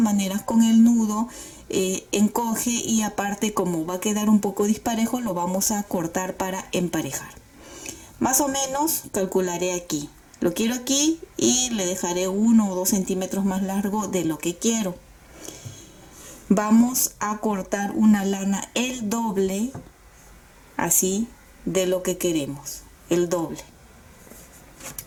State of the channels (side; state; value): both; identical; correlation 1.00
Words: maneras con el nudo encoge, y aparte como va a quedar un poco disparejo lo vamos a cortar para emparejar. Más o menos calcularé aquí. Lo quiero aquí y le dejaré 1 o 2 centímetros más largo de lo que quiero. Vamos a cortar una lana el doble, así, de lo que queremos, el doble.